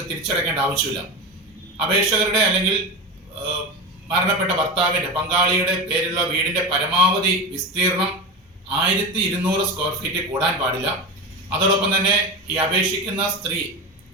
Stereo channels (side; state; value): both; normal; correlation 0.22